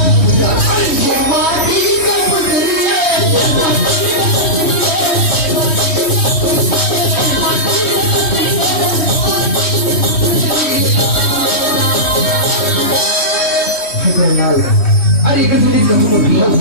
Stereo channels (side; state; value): right; late; 3.1 ms